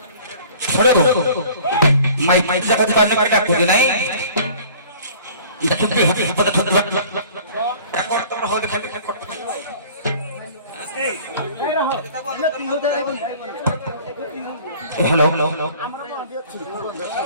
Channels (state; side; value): inverted; both; correlation -0.49